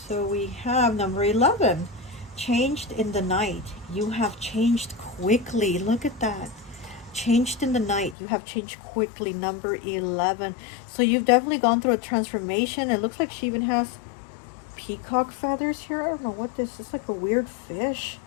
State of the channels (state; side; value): drops out; right; at 8.2 s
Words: So we have number 11. Changed in the night. You have changed quickly. Look at that. Changed in the night. You have changed quickly. Number 11. So you've definitely gone through a transformation. It looks like she even has peacock feathers here. I don't know what this is. Like a weird fish.